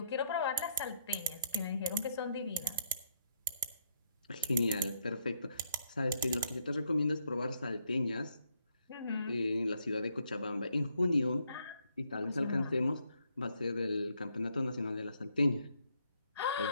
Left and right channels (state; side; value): inverted; both; correlation -0.74